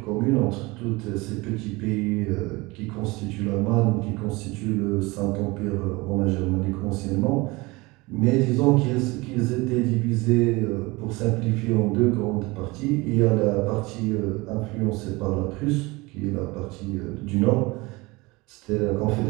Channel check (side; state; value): left; quieter; 23.4 dB